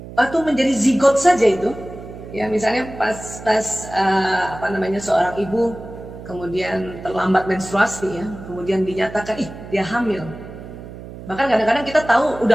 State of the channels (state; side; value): noise; right; hum, 14 dB below the sound